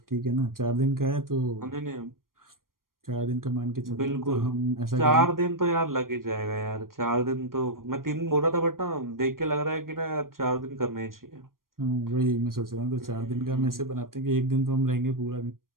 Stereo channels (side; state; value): left; late; 0.91 ms